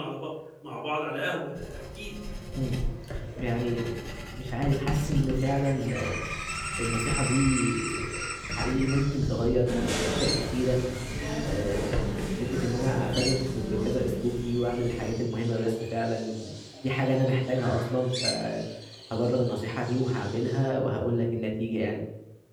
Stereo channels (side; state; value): both; identical; correlation 1.00